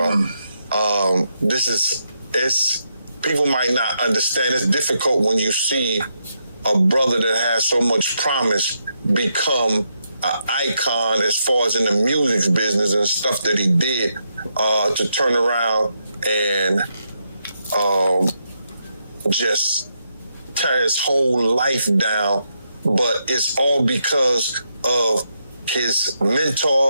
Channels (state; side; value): inverted; both; correlation -0.81